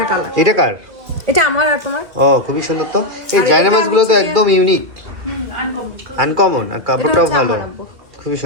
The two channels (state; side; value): late; left; 2.3 ms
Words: কালার। এটা কার? এটা আমার আর তোমার। ও, খুবই সুন্দর তো। এই জায়নামাজগুলো তো একদম ইউনিক, আনকমন, আর কাপড়টাও ভালো, খুবই